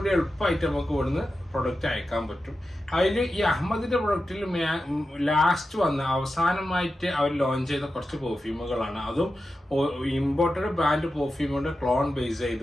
എളുപ്പമായിട്ട് നമുക്ക് ഇവിടുന്ന് പ്രൊഡക്റ്റ് അയക്കാൻ പറ്റും. അതിൽ ഈ അഹമ്മദിന്റെ പ്രൊഡക്റ്റിൽ ലാസ്റ്റ് അവസാനമായിട്ട് അവർ ലോഞ്ച് ചെയ്ത കുറച്ച് പെർഫ്യൂമുകളാണ്. അതും ഇമ്പോർട്ടഡ് ബ്രാൻഡ് പെർഫ്യൂമുകളുടെ ക്ലോൺ ബേസ്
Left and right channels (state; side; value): normal; both; correlation 0.91